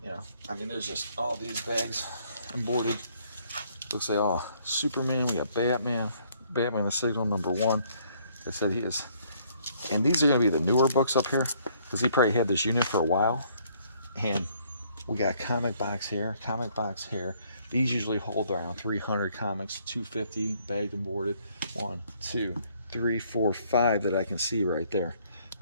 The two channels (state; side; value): inverted; both; correlation -0.65